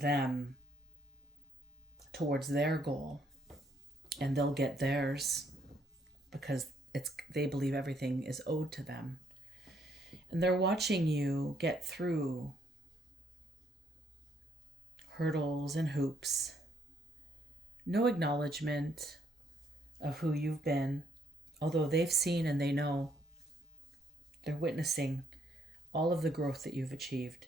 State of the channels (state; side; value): normal; both; correlation 0.70